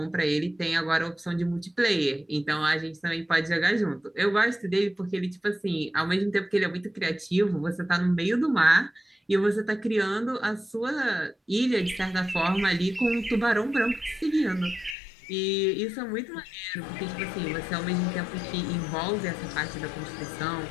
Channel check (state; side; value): drops out; right; at 15.0 s